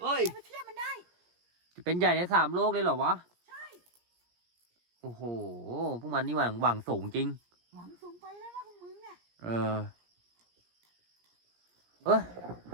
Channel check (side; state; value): left; late; 17 ms